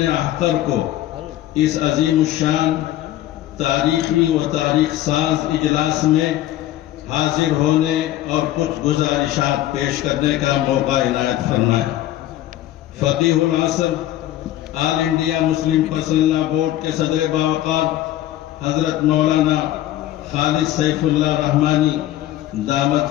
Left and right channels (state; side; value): quieter; right; 13.8 dB